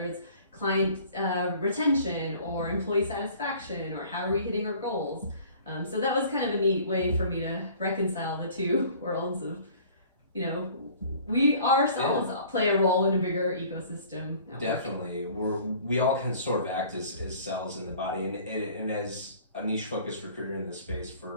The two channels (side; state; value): both; inverted; correlation -0.50